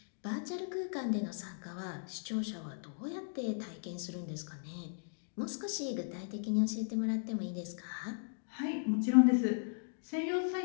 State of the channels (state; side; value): silent; right; digital silence